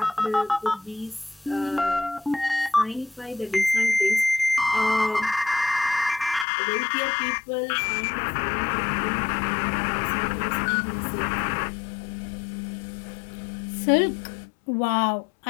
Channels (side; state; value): right; drops out; at 6.5 s